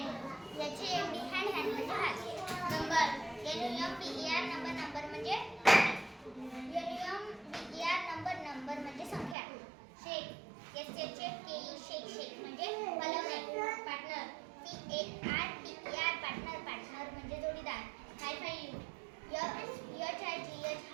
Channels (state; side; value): drops out; left; at 9.3 s